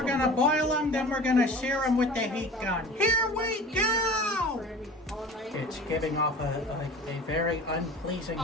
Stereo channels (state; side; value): normal; both; correlation 0.39